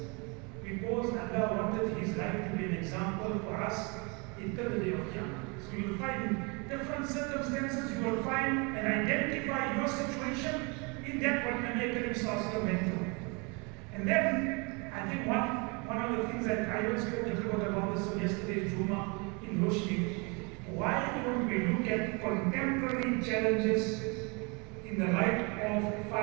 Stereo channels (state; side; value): quieter; left; 30.9 dB